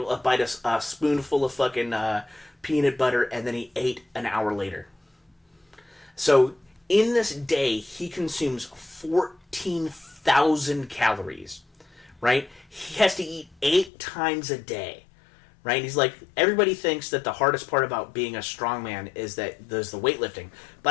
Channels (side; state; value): right; drops out; at 13.9 s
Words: a spoonful of fucking peanut butter, and then he ate an hour later. So in this day, he consumes 14,000 calories, right? He has to eat 8 times a day. Right? And he's like, everybody thinks that the hardest part about being a strongman is that there's the weightlifting.